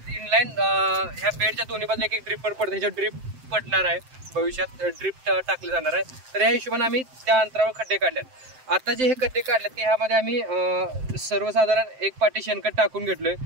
इनलाईन ह्या बेडच्या दोन्ही बाजूला एक ड्रिपर पडते, ह्याच्यावर ड्रिप पडणार आहे, भविष्यात ड्रिप टाकले जाणार आहे। तर या हिशोबाने आम्ही त्या अंतरावर खड्डे काढलेत। आता जे हे खड्डे काढलेत की ह्यामध्ये आम्ही सर्वसाधारण 1 पाटी शेणखत टाकून घेतलोय।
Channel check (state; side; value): late; left; 7.7 ms